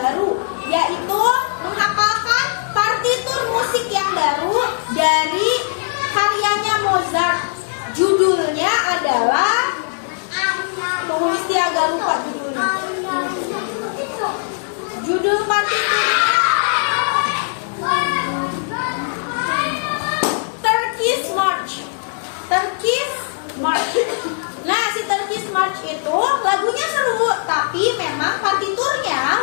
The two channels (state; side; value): silent; right; digital silence